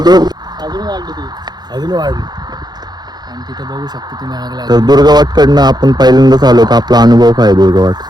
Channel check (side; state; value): left; late; 0.20 ms